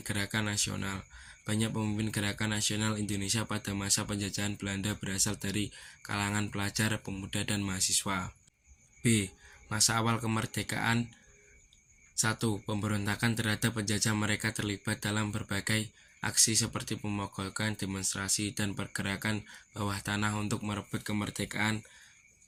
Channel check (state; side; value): identical; both; correlation 1.00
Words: gerakan nasional. Banyak pemimpin gerakan nasional Indonesia pada masa penjajahan Belanda berasal dari kalangan pelajar, pemuda, dan mahasiswa. B. Masa awal kemerdekaan. 1. Pemberontakan terhadap penjajah, mereka terlibat dalam berbagai aksi seperti pemogokan, demonstrasi, dan pergerakan bawah tanah untuk merebut kemerdekaan